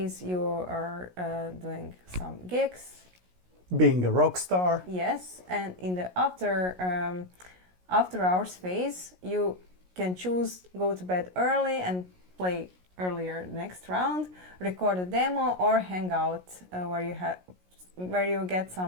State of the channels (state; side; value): late; left; 16 ms